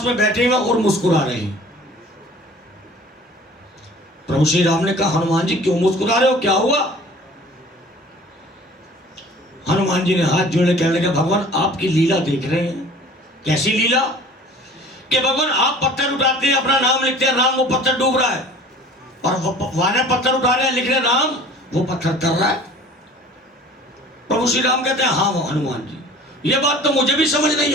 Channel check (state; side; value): normal; both; correlation 0.46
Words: में बैठे हुए और मुस्कुरा रहे हैं। प्रभु श्री राम ने कहा हनुमान जी क्यों मुस्कुरा रहे हो, क्या हुआ? हनुमान जी ने हाथ जोड़े कहने लगे भगवान आपकी लीला देख रहे हैं। कैसी लीला? कि भगवान आप पत्थर उठाते हैं, अपना नाम लिखते हैं राम, वो पत्थर डूब रहा है, और वानर पत्थर उठा रहे हैं, लिख रहे हैं राम, वो पत्थर तर रहा है। प्रभु श्री राम कहते हैं हाँ हनुमान जी, ये बात तो मुझे भी समझ नहीं